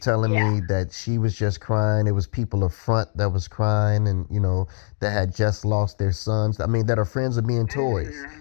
me that she was just crying. It was people up front that was crying, and that had just lost their sons. That are friends of being toys.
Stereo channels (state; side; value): silent; right; 64 dB below the other